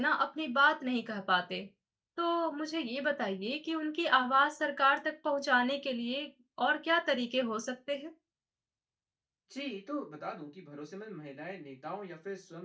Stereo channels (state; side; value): identical; both; correlation 1.00